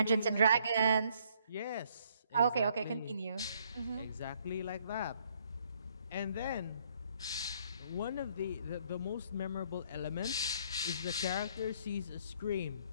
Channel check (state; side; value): inverted; both; correlation -0.66